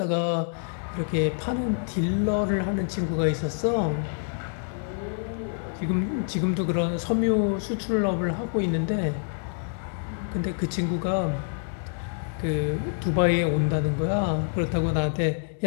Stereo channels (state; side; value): silent; right; 60 dB below the other